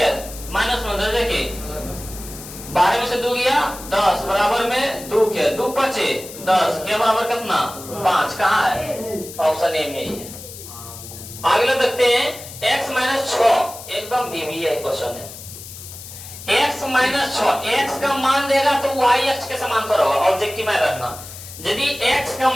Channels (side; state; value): left; noise; hiss, 14 dB below the sound